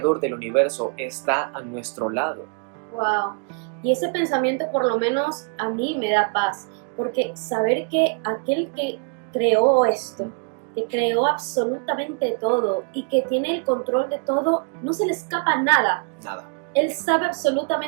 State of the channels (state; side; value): quieter; left; 35.7 dB